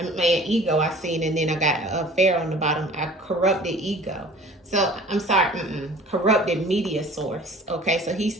I seen, and then I got a fair on the bottom. I corrupted ego. So I'm sorry, corrupted media source. Okay, so he's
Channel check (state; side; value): normal; both; correlation 0.47